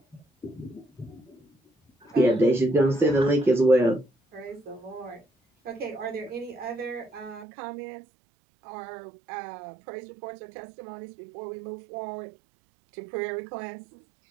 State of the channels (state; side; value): drops out; left; at 7.5 s